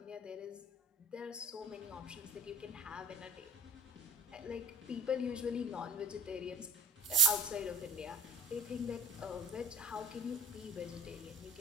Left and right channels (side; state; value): both; normal; correlation 0.53